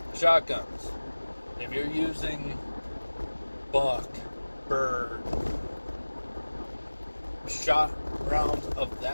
Shotguns. If you're using buck, bird, shot rounds of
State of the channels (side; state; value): both; inverted; correlation -1.00